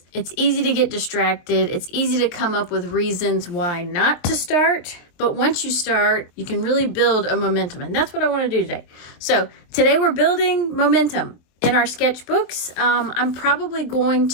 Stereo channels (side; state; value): right; late; 23 ms